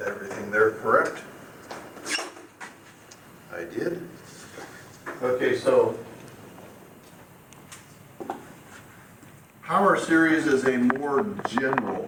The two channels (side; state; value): both; identical; correlation 1.00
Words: everything there correct. I did. Okay, so power series is a more general